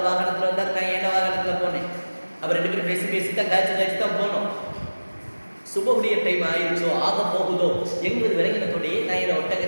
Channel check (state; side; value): inverted; both; correlation -1.00